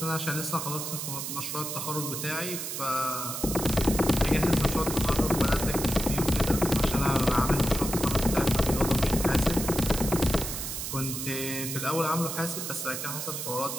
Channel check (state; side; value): noise; right; hiss, 5 dB below the sound